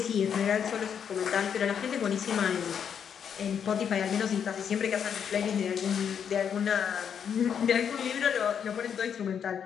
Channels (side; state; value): right; quieter; 7.8 dB